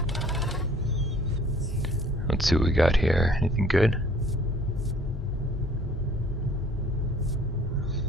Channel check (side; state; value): both; normal; correlation 0.54